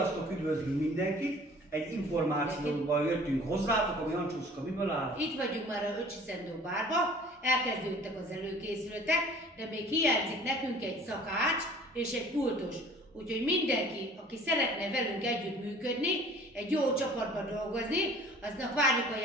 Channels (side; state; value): both; normal; correlation 0.49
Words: üdvözlünk mindenkit! Egy információval jöttünk hozzátok, ami Ancsuszka miből áll? Itt vagyunk már a Öcsi-Szendó bárba, elkezdődtek az előkészületek, de még hiányzik nekünk egy szakács és egy pultos. Úgyhogy mindenki, aki szeretne velünk együtt működni, egy jó csapatban dolgozni, aznak várjuk a